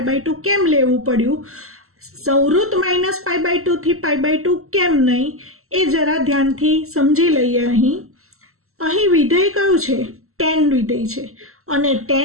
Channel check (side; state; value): left; late; 0.63 ms